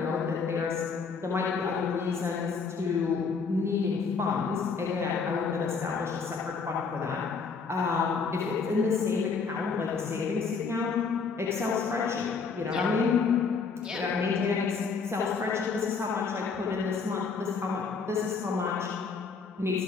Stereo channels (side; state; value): right; quieter; 5.2 dB